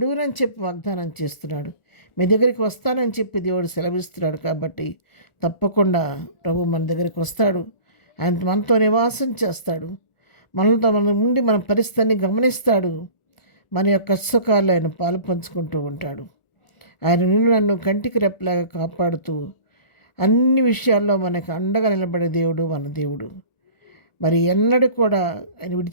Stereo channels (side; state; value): right; late; 1.4 ms